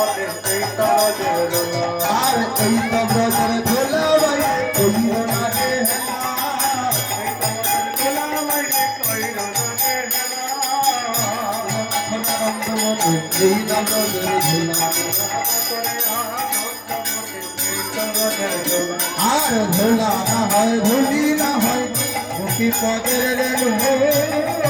আর এই তো ব্রজের ধুলা ভাই কইরো না রে আনন্দময়ী এই আনন্দের ধুলা, আর ধুলা না হয় ধুলি না হয় মুখি পদের রেণু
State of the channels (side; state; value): both; identical; correlation 1.00